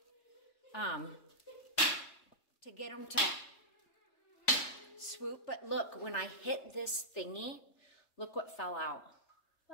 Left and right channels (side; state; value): right; late; 3.5 ms